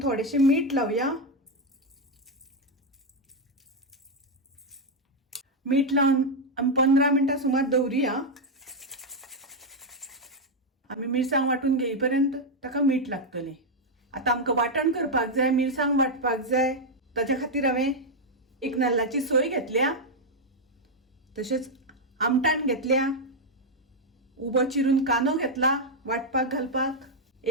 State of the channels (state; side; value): normal; both; correlation 0.01